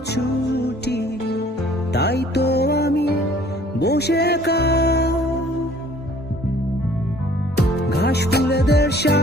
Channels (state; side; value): normal; both; correlation 0.55